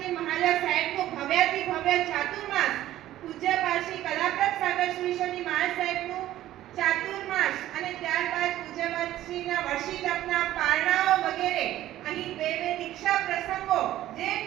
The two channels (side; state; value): left; quieter; 13.9 dB